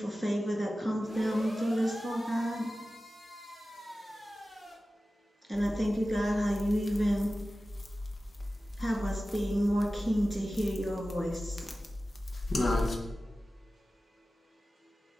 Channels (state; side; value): normal; both; correlation 0.95